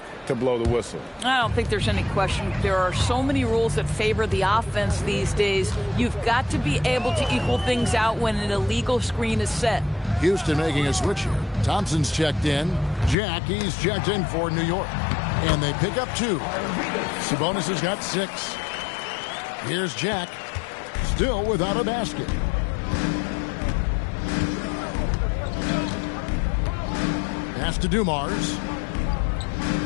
to blow the whistle. I don't think there's any question. There are so many rules that favor the offense these days. You've got to be able to equal things out when an illegal screen is set. Houston making a switch here. Thompson's checked in. He's checked in for New York. And they pick up 2. Sabonis has got 6. Here's Jack. Still without a basket. Pass to Dumars.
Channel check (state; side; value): drops out; right; at 13.2 s